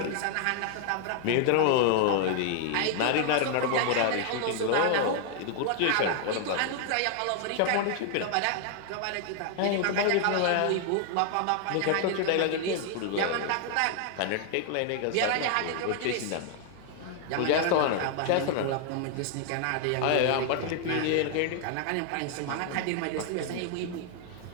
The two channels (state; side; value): different; both; correlation 0.00